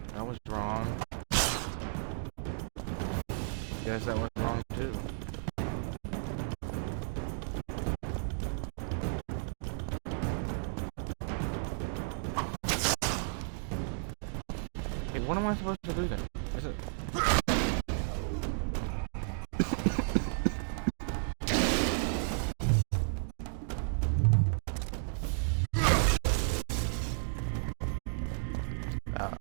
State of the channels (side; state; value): left; silent; digital silence